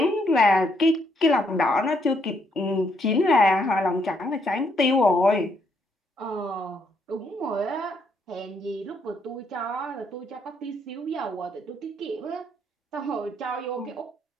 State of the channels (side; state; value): both; normal; correlation 0.73